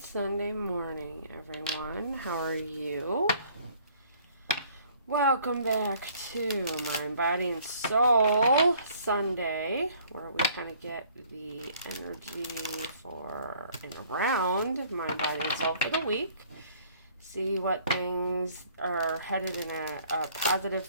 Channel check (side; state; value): both; inverted; correlation -0.58